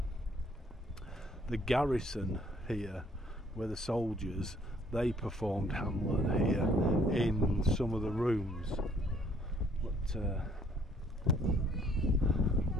the garrison here, where the soldiers, they performed Hamlet here in some of the rooms. But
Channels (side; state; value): both; normal; correlation 0.62